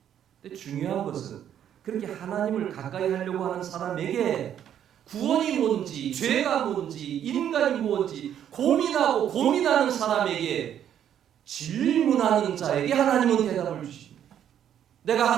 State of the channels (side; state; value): left; quieter; 9.9 dB